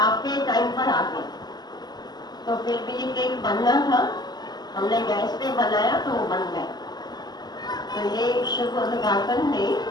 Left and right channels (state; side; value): late; right; 0.20 ms